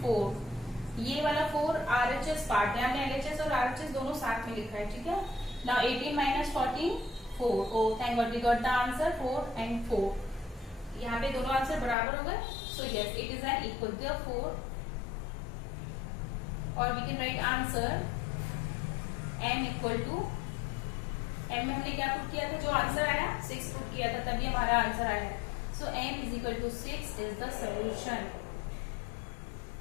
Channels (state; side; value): drops out; right; at 12.0 s